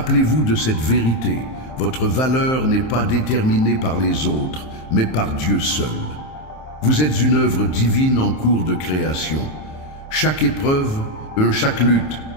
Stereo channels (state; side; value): late; right; 27 ms